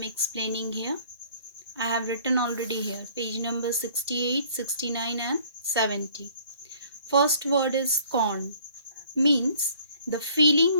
explaining here. I have written already here, page number 68, 69 and 70. First word is scorn, means the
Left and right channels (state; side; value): inverted; both; correlation -0.56